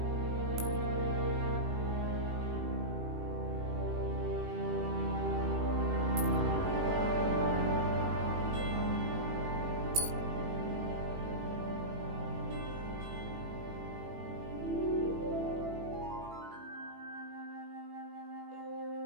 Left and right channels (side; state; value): left; late; 18 ms